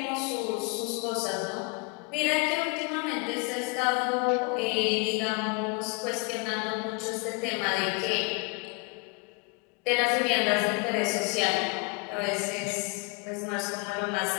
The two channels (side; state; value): right; quieter; 30.3 dB